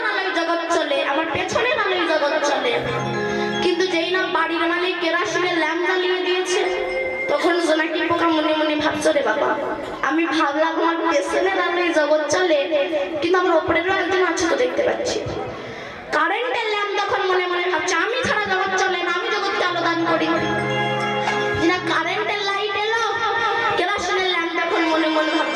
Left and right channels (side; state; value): both; identical; correlation 1.00